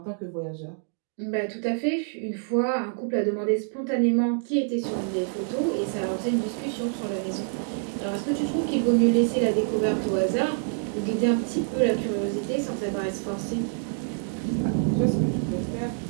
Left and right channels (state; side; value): silent; left; 60 dB below the other